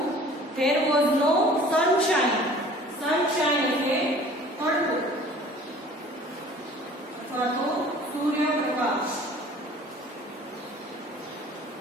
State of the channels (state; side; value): normal; both; correlation 0.48